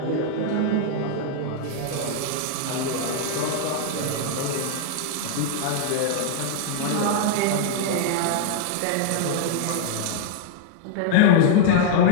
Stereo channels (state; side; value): different; both; correlation 0.00